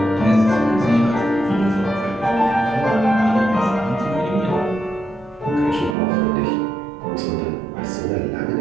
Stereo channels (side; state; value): left; drops out; at 6.0 s